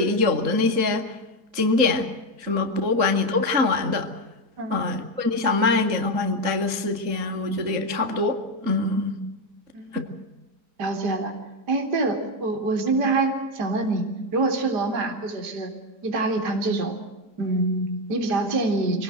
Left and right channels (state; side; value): late; left; 3.8 ms